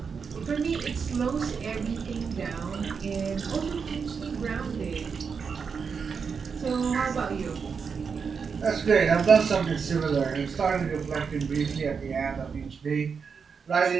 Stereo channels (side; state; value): left; quieter; 5.9 dB